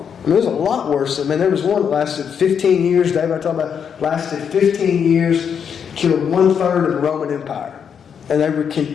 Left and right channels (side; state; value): right; quieter; 7.4 dB